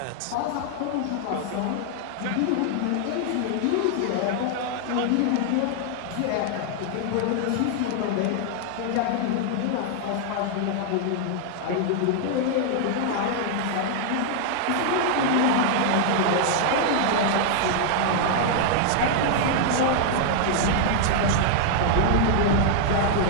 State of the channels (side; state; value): both; different; correlation 0.00